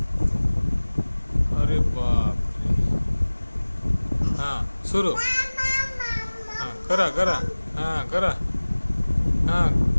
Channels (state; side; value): inverted; both; correlation -1.00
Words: अरे बाप रे. हा सुरू. हा करा करा. हा करा. हा